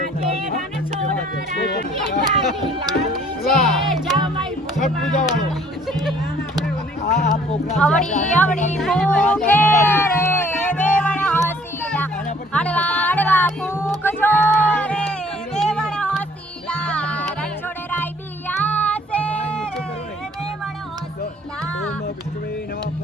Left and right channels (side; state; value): both; normal; correlation 0.58